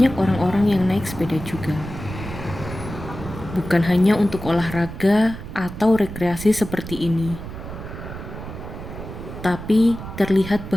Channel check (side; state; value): right; noise; rumble, 10 dB below the sound